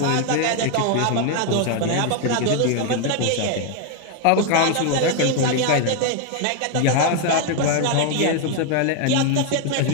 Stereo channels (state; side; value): different; both; correlation 0.01